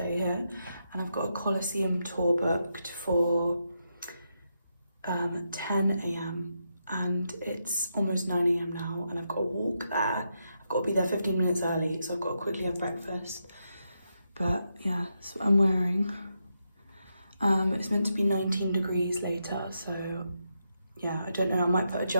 here, and I've got a Colosseum tour booked for 10 AM and it's almost 9 AM now, and I've got to walk there. I've got to be there 15 minutes early, so I've got to quickly have breakfast. But yeah, that's what I'm wearing. It's meant to be 19 degrees later, so yeah, I don't know, I might put a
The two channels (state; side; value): inverted; both; correlation -0.83